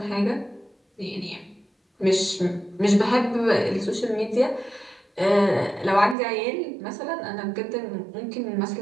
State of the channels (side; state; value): left; drops out; at 6.2 s